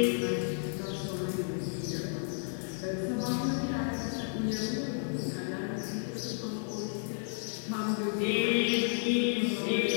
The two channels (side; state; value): right; silent; 56 dB below the other